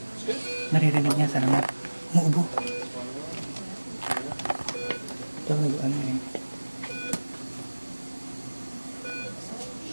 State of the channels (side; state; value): both; inverted; correlation -1.00